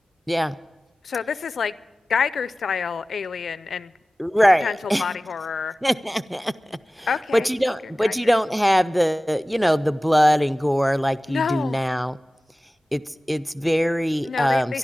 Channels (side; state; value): both; normal; correlation 0.97